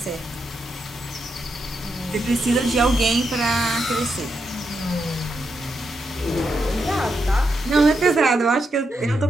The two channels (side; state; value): both; normal; correlation 0.83